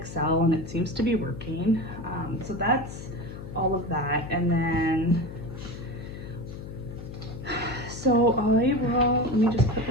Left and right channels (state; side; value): noise; left; hum, 11 dB below the sound